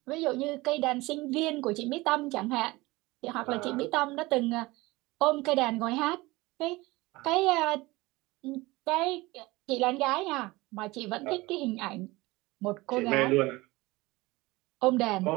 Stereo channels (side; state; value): left; quieter; 21.2 dB